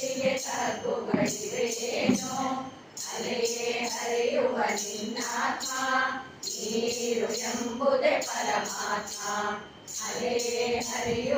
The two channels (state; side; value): identical; both; correlation 1.00